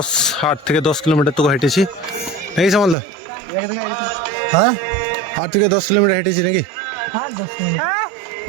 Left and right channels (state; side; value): drops out; left; at 3.0 s